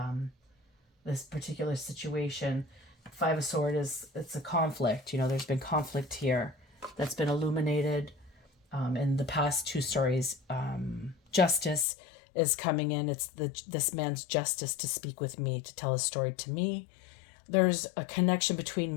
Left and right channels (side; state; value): right; drops out; at 11.9 s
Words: particular situation. Five of Swords it's a conflict. You know, there's been conflict here that's been illuminated in the past two stories. Justice is coming in. It's this man's justice to speak with me, to tell his story to me. There's a connection